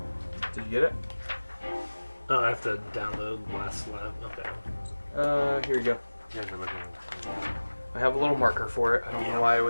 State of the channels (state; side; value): inverted; both; correlation -1.00